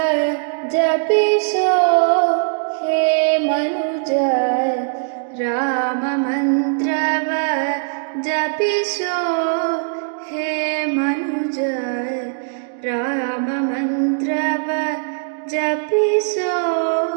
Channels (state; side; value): silent; left; digital silence